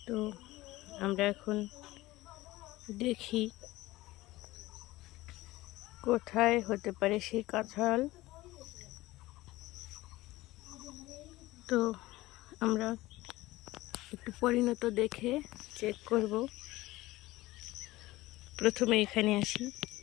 তো আমরা এখন দেখি কোথায় হতে পারে সেই কাঁঠাল। তো আমরা একটু পরিণত দেখে চেক করব। প্রথমে এখানে আসি,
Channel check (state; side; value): quieter; right; 18.4 dB